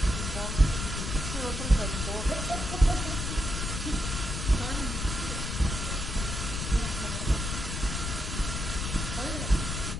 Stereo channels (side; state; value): left; noise; rumble, 3 dB below the sound